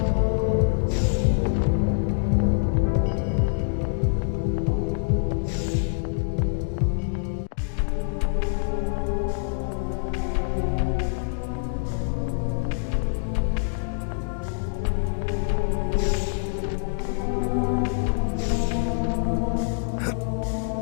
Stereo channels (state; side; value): silent; right; digital silence